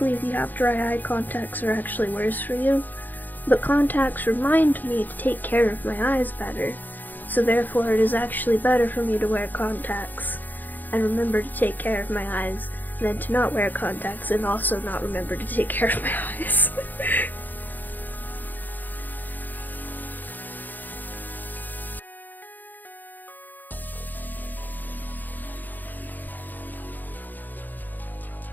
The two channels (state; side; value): late; right; 0.086 ms